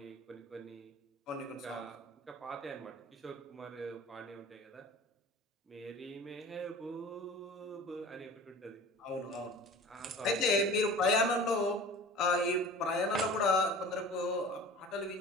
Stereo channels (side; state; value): both; normal; correlation 0.41